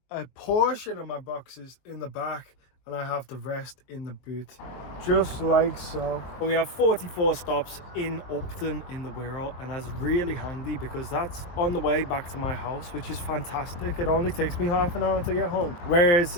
a portion of my boxes in the back and I have the rest in the boot. Just like so. We have 44 stops in Upton in the Wirral, and that's really handy because that's on the way back to my house, which is fantastic. It only takes me half an hour to get home. Whereas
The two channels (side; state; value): right; late; 22 ms